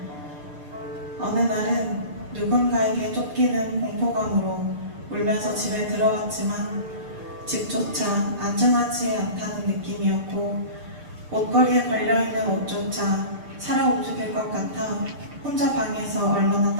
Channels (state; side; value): late; left; 6.7 ms